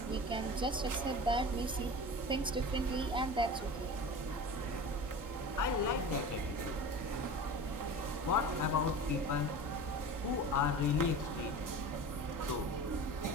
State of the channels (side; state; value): both; normal; correlation 0.34